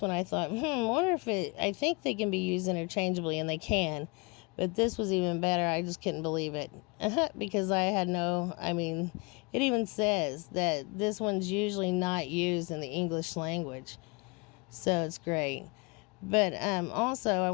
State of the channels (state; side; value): quieter; right; 29.6 dB